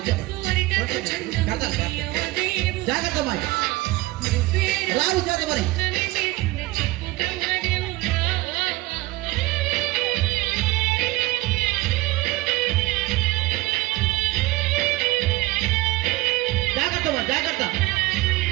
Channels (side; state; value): left; quieter; 19.9 dB